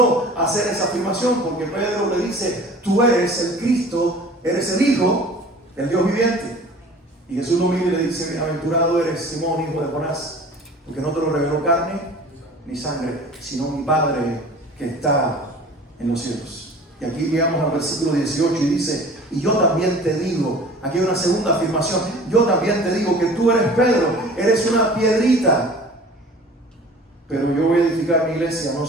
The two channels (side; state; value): both; normal; correlation 0.44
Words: a hacer esa afirmación. Porque Pedro le dice: tú eres el Cristo, eres el Hijo del Dios viviente. Y Jesús lo mira y le dice: bienaventurado eres, Simón, hijo de Jonás, porque no te lo reveló carne ni sangre, sino mi Padre que está en los cielos. Y aquí llegamos al versículo 18 y dice: y yo también te digo. Aquí hay una segunda afirmación: yo también te digo que tú eres Pedro, eres una piedrita, pero yo voy a edificar mi iglesia no